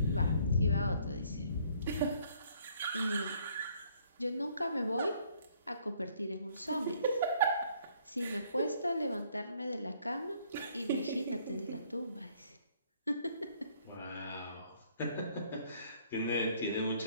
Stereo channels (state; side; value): inverted; both; correlation -0.63